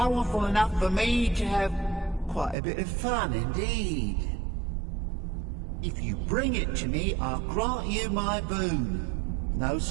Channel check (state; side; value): drops out; left; at 2.6 s